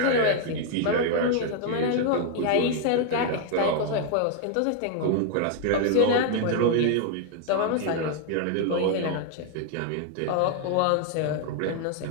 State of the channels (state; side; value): different; both; correlation 0.00